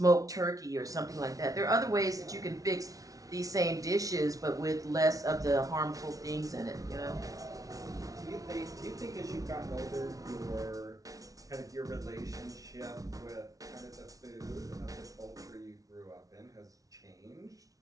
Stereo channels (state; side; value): late; left; 0.17 ms